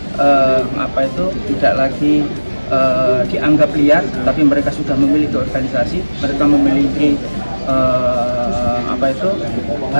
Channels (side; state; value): both; inverted; correlation -1.00